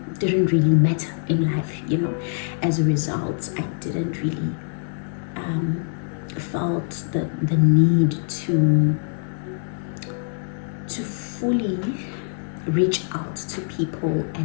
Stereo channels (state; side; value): silent; right; digital silence